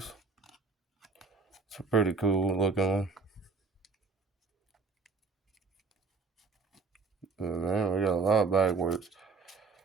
It's a pretty cool looking one. Oh, man, we got a lot backwards.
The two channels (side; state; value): left; quieter; 4.6 dB